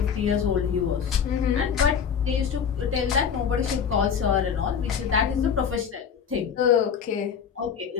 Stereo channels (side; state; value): right; quieter; 7.2 dB